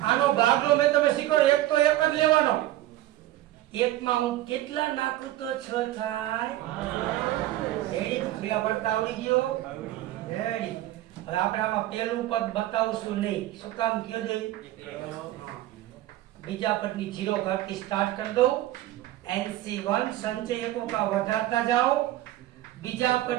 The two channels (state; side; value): quieter; left; 15.0 dB